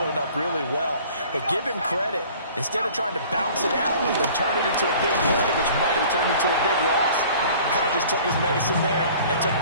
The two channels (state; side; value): inverted; both; correlation -0.49